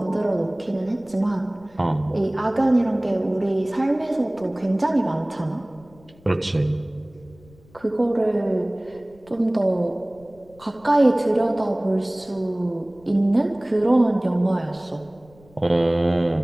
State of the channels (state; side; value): noise; left; rumble, 27 dB below the sound